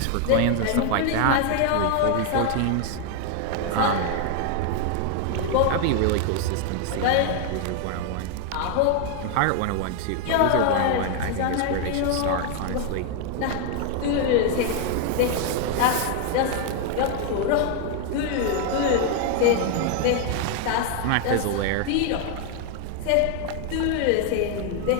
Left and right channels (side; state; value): both; different; correlation 0.00